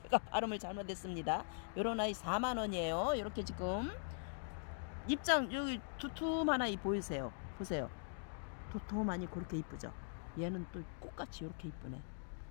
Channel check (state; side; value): silent; right; digital silence